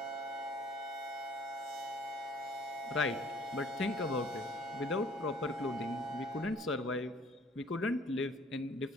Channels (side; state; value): both; normal; correlation 0.55